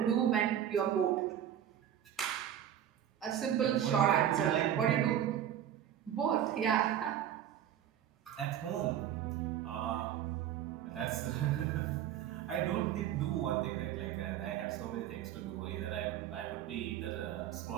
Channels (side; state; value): left; quieter; 10.4 dB